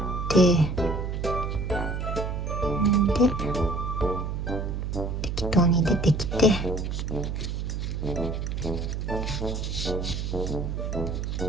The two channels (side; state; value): right; noise; hum, 3 dB below the sound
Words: て、で適当に出てきて、